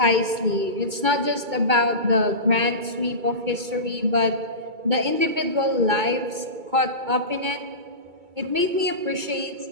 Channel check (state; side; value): late; left; 2.3 ms